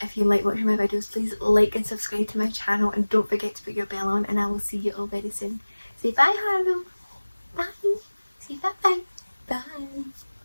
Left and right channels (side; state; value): both; inverted; correlation -1.00